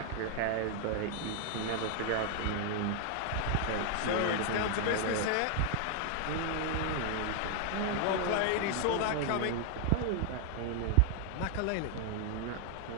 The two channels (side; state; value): both; different; correlation 0.00